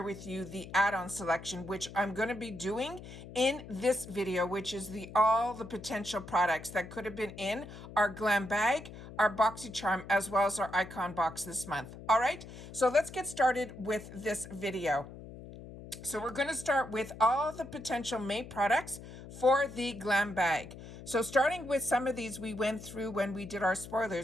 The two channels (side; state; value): left; noise; hum, 14 dB below the sound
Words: with you the add-on selection, which I'm going to be doing in this video, which is all the potential products that could have been in our Glam Bag, our Boxycharm, as well as our icon box this month. All right, so let's get started with this video. So we're going to start with all the potential May products for the Glam Bag. So starting with some of these we went through when we did our